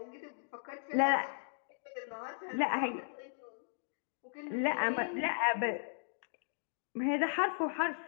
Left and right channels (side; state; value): right; silent; digital silence